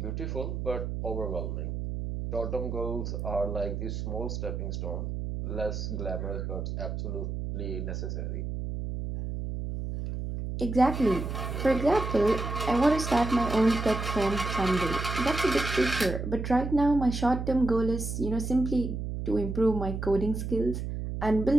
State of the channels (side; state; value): right; noise; hum, 4 dB below the sound